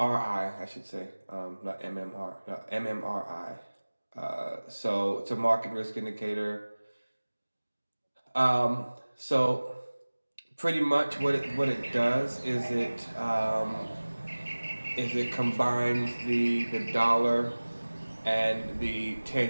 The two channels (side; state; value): both; inverted; correlation -1.00